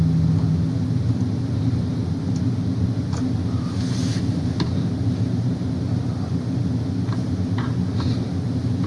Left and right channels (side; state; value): both; identical; correlation 1.00